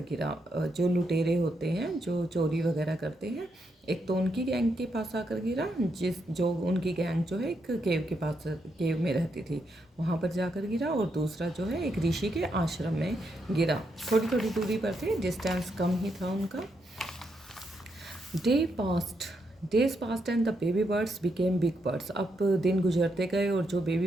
गिरा। जो लुटेरे होते हैं जो चोरी वगैरह करते हैं, एक तो उनकी गैंग के पास आकर गिरा, जो उनकी गैंग जो है एक केव के पास, केव में रहती थी, वहाँ पर जाकर गिरा। और दूसरा जो है एक ऋषि के आश्रम में गिरा। थोड़ी थोड़ी दूरी पर थे, डिस्टेंस कम ही था उनका। Day past days past and the baby birds became big birds. अब दिन गुजरते गए और जो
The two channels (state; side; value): normal; both; correlation 0.80